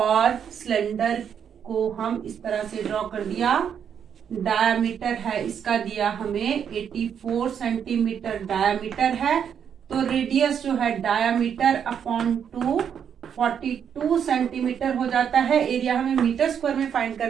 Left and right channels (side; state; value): left; quieter; 8.0 dB